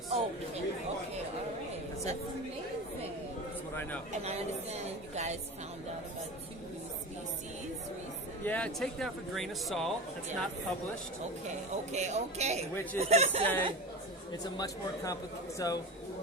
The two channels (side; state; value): both; normal; correlation 0.27